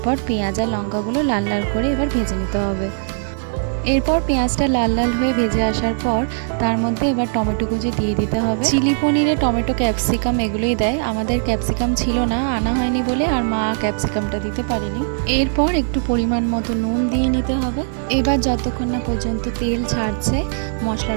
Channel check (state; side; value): silent; left; digital silence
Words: পেঁয়াজ আর লঙ্কাগুলো লাল লাল করে এবার ভেজে নিতে হবে। এরপর পেঁয়াজটা লাল লাল হয়ে ভেজে আসার পর তার মধ্যে এবার টমেটো কুচি দিয়ে দিতে হবে। চিলি পনিরে টমেটো, ক্যাপসিকাম এগুলোই দেয়। আমাদের ক্যাপসিকাম ছিল না, আনা হয়নি বলে, আর মা ক্যাপসিকামটা দিতে পারেনি। এরপর একটু পরিমাণ মতো নুন দিয়ে নিতে হবে। এবার যতক্ষণ না পর্যন্ত তেল ছাড়ছে